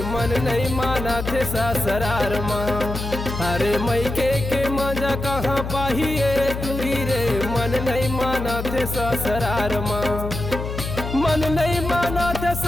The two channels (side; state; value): left; noise; hum, 6 dB below the sound